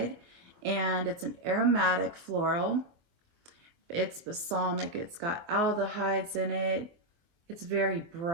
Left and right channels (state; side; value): late; left; 24 ms